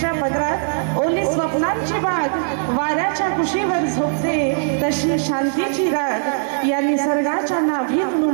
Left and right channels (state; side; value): silent; left; digital silence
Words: पदरात ओली स्वप्नांची बाग, वाऱ्याच्या कुशीवर झोपते तशी शांतीची राग। या निसर्गाच्या नाभीत